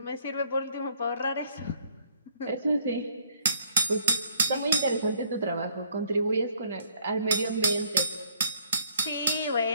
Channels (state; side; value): inverted; both; correlation -0.63